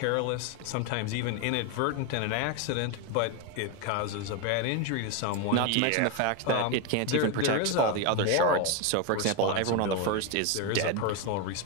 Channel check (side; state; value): both; different; correlation 0.02